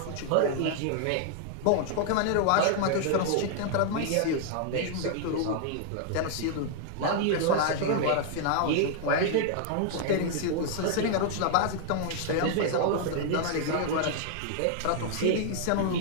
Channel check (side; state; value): both; different; correlation 0.00